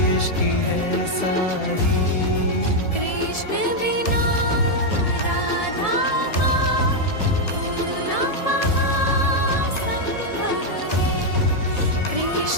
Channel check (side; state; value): right; late; 1.7 ms